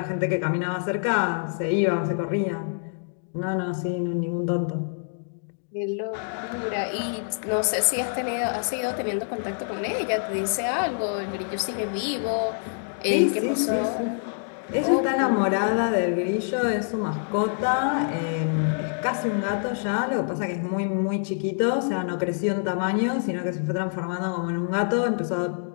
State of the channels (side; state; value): right; silent; digital silence